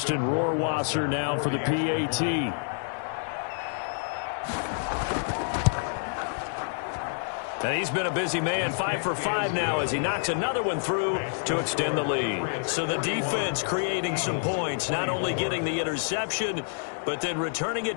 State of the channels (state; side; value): silent; right; digital silence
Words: Rohrwasser now for the PAT. And he's been a busy man, 5 for 5 now as he knocks another one through to extend the lead. So the defense creating some points, not only getting the interception, but then returning